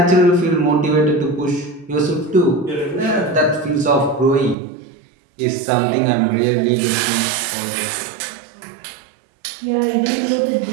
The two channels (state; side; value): drops out; left; at 4.5 s